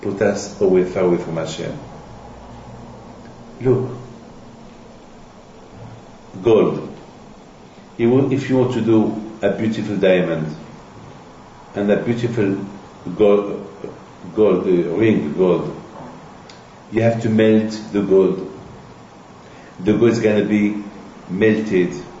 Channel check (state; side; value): identical; both; correlation 1.00